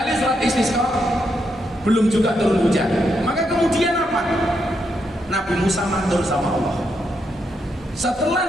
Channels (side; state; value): both; normal; correlation 0.80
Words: sholat istisqa belum juga turun hujan. Maka kemudian apa? Nabi Musa matur sama Allah. Setelah